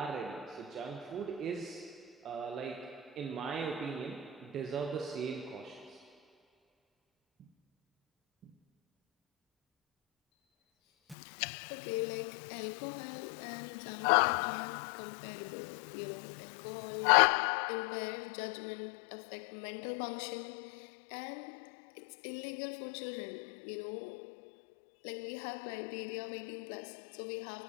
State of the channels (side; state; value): right; drops out; at 11.2 s